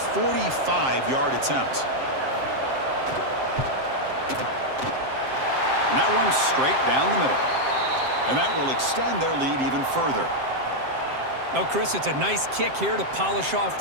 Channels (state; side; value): late; left; 7.6 ms